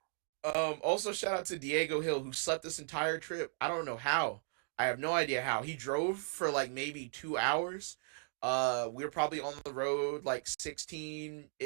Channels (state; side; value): silent; left; digital silence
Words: Also shout out to Diego Hill who slept this entire trip. I don't know how. I have no idea how. He drove for like maybe 2 hours. We were probably on the road like